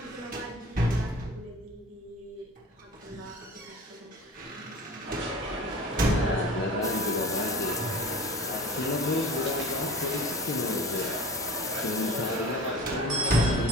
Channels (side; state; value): both; normal; correlation 0.40